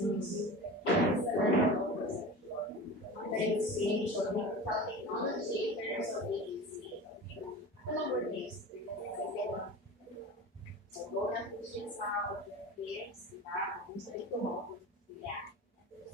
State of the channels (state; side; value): normal; both; correlation 0.33